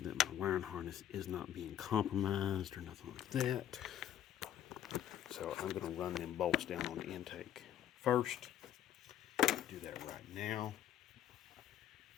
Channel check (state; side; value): quieter; right; 10.9 dB